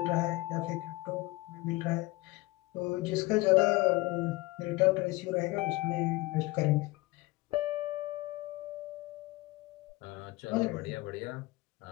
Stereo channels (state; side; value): quieter; right; 20.8 dB